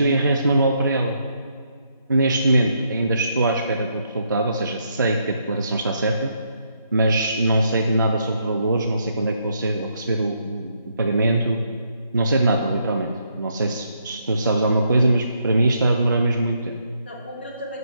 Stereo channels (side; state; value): both; inverted; correlation -0.75